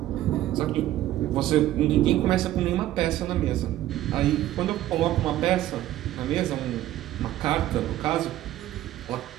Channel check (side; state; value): left; quieter; 14.0 dB